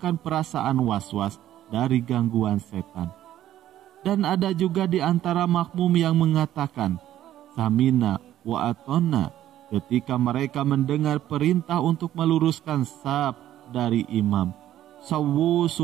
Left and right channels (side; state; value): left; quieter; 12.6 dB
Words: perasaan was-was dari gangguan setan. Dan ada juga di antara makmum yang mengatakan samina wa atona ketika mereka mendengar perintah untuk meluruskan saf dari imam. Sawwu